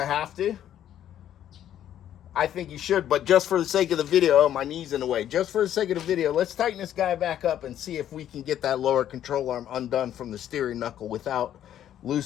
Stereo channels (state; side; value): quieter; right; 10.9 dB